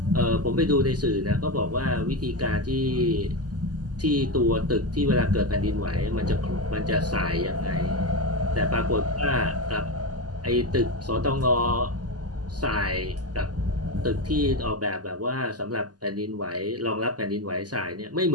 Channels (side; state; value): left; late; 0.69 ms